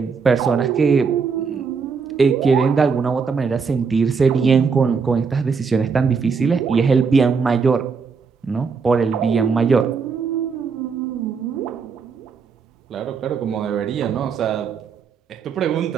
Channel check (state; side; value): quieter; left; 5.5 dB